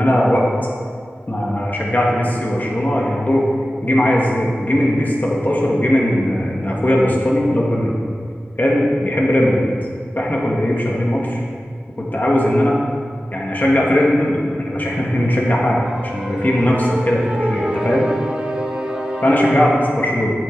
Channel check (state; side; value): normal; both; correlation 0.94